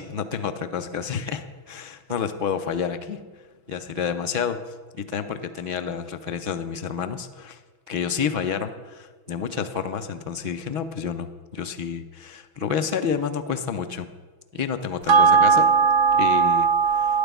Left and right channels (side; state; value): left; late; 6.1 ms